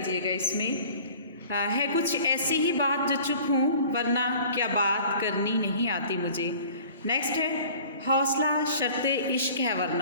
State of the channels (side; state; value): both; inverted; correlation -0.47